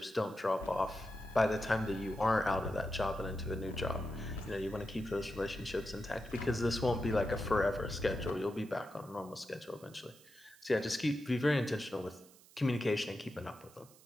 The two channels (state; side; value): noise; right; hiss, 24 dB below the sound